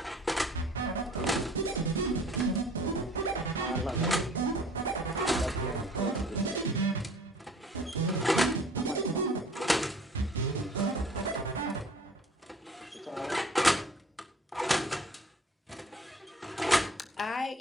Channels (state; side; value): normal; both; correlation 0.50